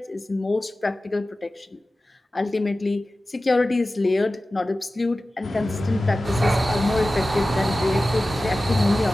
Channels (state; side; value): normal; both; correlation 0.95